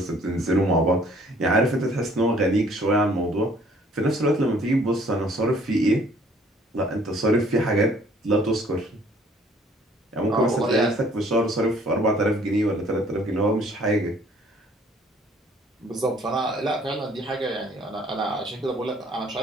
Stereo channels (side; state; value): both; normal; correlation 0.58